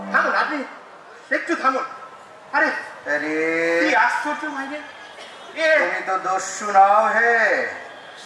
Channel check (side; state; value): both; identical; correlation 1.00